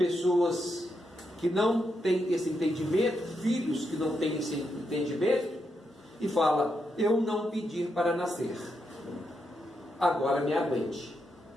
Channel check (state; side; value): normal; both; correlation 0.83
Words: que não têm esse entendimento, filhos que não têm esse entendimento, e fala: eu não pedi para nascer, agora me aguente.